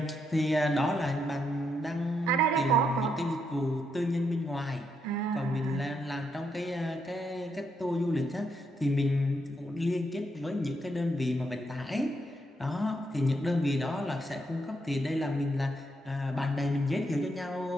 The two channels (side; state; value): both; normal; correlation 0.78